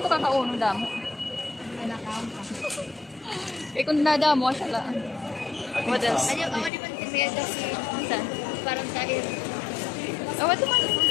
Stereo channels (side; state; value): right; drops out; at 6.7 s